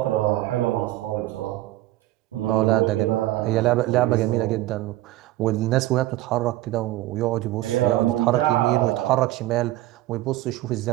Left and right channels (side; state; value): left; quieter; 16.3 dB